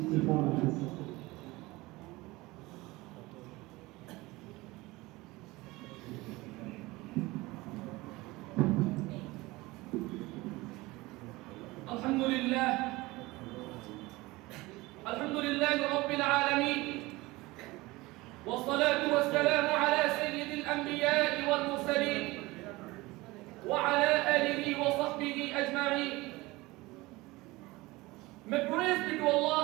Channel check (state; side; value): quieter; left; 21.1 dB